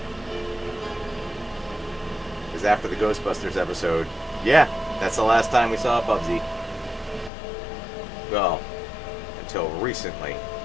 Because after the Ghostbusters episode, yeah, that's the last time we saw Bubsy. Well, until recently.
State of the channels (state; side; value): drops out; right; at 7.3 s